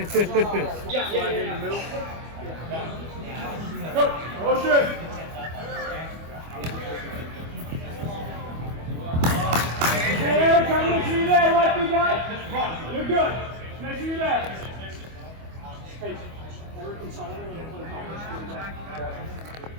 Yeah, in the middle. Go! Motion! Hey, Eric, come make sure you're there, right, guy? Just run. You're good. Make sure you're there. Hey, Eric and Solomon are going to play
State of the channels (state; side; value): late; left; 25 ms